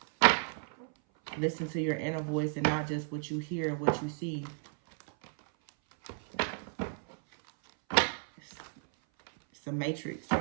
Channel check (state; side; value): silent; left; 56 dB below the other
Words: Listen to your inner voice and not just what you hear and what you see. It's a matrix